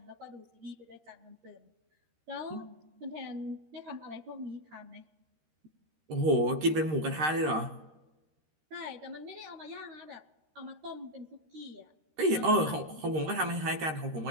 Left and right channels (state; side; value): late; left; 13 ms